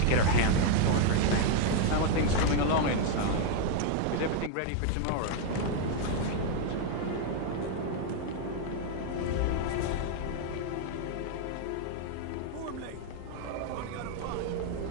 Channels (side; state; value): both; different; correlation 0.00